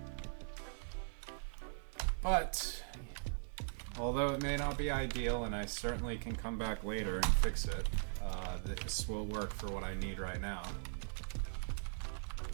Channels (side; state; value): left; silent; digital silence